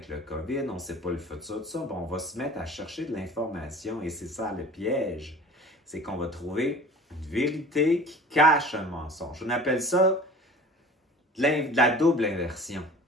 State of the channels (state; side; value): normal; both; correlation 0.42